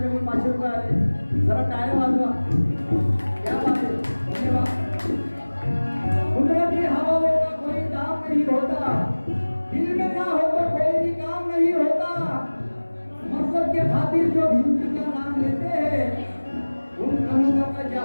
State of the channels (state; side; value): inverted; both; correlation -1.00